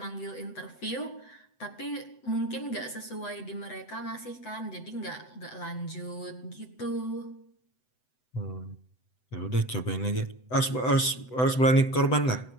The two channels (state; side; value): late; right; 7.9 ms